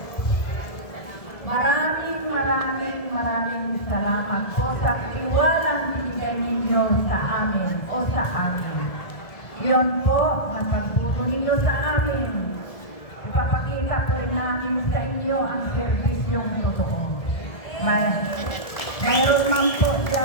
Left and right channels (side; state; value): right; late; 1.7 ms